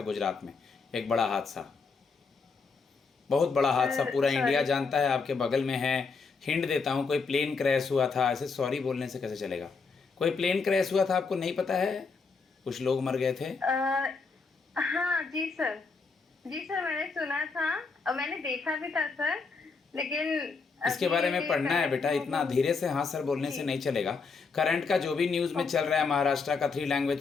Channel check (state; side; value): quieter; right; 4.8 dB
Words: गुजरात में? एक बड़ा हादसा, बहुत बड़ा हादसा, पूरा इंडिया सॉरी जानता है, आपके बगल में है। हिंट देता हूँ, कोई प्लेन क्रैश हुआ था। ऐसे सॉरी बोलने से कैसे चलेगा? कोई प्लेन क्रैश हुआ था, आपको नहीं पता है? कुछ लोग मर गए थे। हाँ जी सर, जी सर मैंने सुना था और मैंने देखा भी था सर, लेकिन इसके अभी बारे में ये पढ़ना है करंट बेटा, में इतना अभी धीरे से हाँ सर बोलने से जी नहीं चलेगा। करंट का जो भी न्यूज़ में चल ओके रहा है, महाराष्ट्र का 3